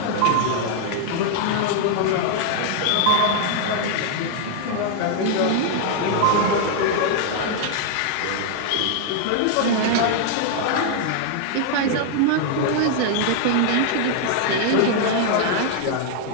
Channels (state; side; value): different; both; correlation 0.00